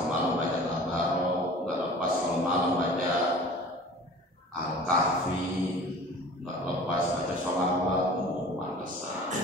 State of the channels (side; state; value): both; normal; correlation 0.43